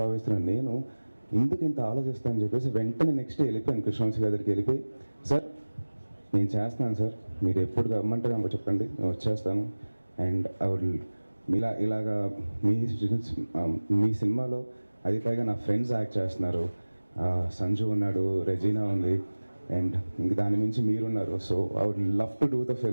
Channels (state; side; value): inverted; both; correlation -1.00